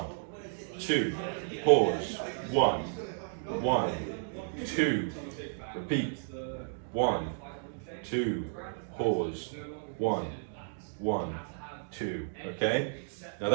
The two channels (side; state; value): left; silent; digital silence